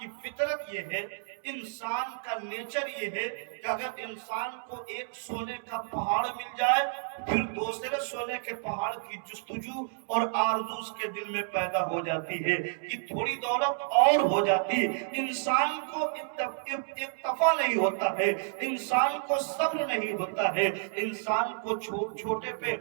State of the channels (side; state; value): left; silent; 58 dB below the other